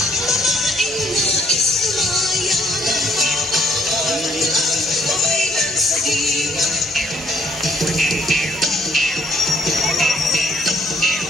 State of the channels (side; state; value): both; normal; correlation 0.65